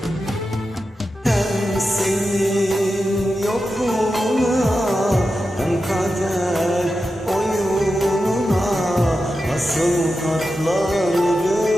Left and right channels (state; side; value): normal; both; correlation 0.90